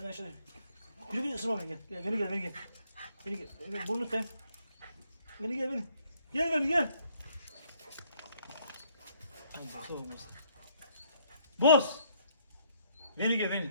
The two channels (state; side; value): inverted; both; correlation -0.67